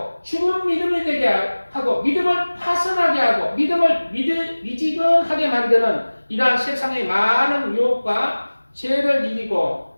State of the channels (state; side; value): inverted; both; correlation -1.00